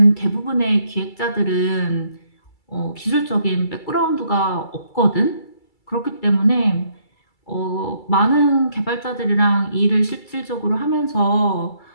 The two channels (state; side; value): late; right; 2.3 ms